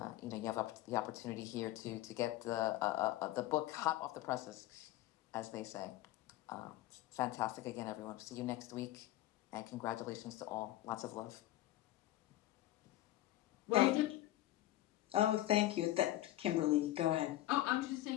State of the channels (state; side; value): quieter; right; 15.3 dB